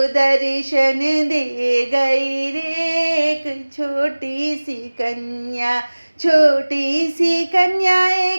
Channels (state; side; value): inverted; both; correlation -1.00